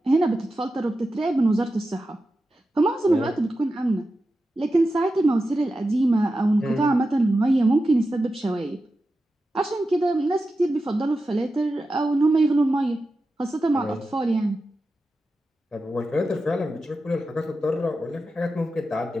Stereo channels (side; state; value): both; normal; correlation 0.91